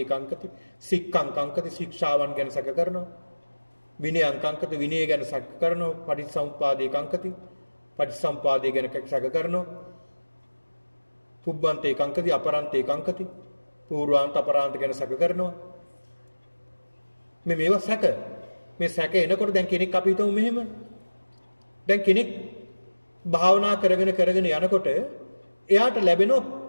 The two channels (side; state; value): both; inverted; correlation -1.00